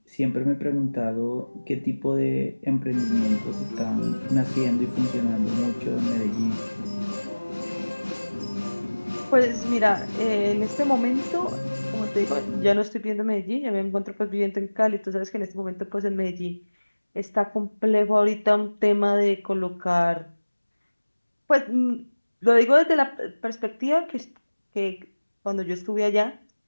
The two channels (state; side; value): inverted; both; correlation -1.00